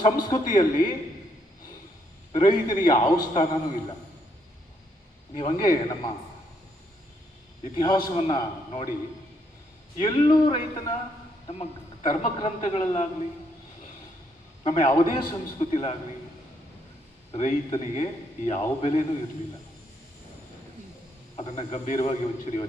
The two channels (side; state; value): both; normal; correlation 0.73